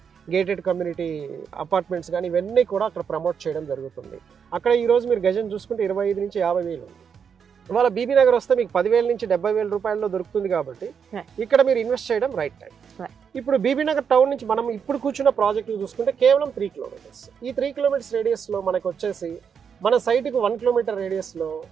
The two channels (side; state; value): left; quieter; 7.0 dB